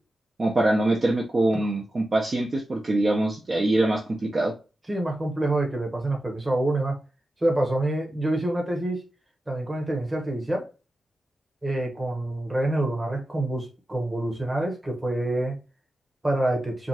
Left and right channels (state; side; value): normal; both; correlation 0.92